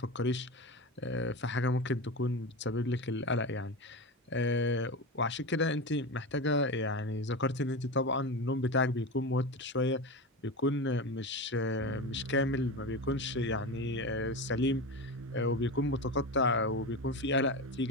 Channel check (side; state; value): both; normal; correlation 0.23